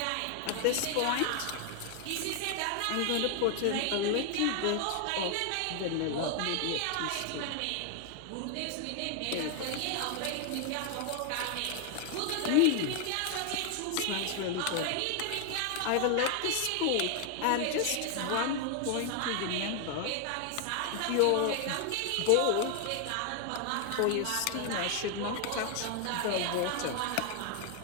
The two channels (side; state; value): both; different; correlation 0.00